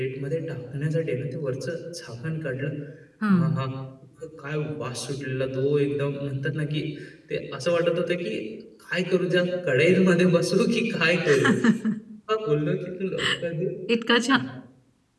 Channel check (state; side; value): identical; both; correlation 1.00